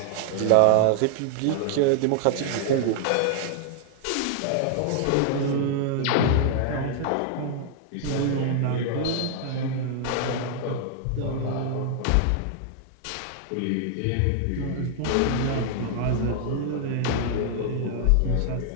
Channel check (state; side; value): different; both; correlation -0.01